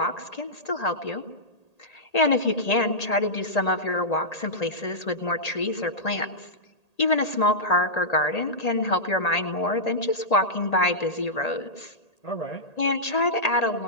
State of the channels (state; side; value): late; right; 1.8 ms